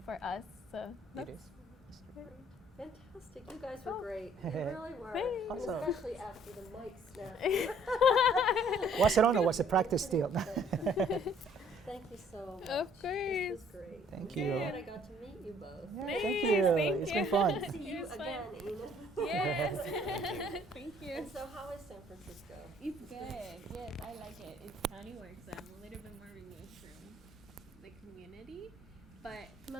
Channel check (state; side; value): normal; both; correlation 0.60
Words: for us. So it is. Fantastic. You guys were great. You really were. Thanks. Awesome. Especially after the mic snap. Was it on or was it practice still? Thank you so much. Of course. This was great. Thank I'm you. glad I got to meet you both. Yeah, Nice, thank you. thank It's you. been fun. See you It was again, fun. Enith. Yes. Thank you. And so how is San Francisco? It's good. Yes, I like it. It's county work, so I'm a little bit more removed from the community, but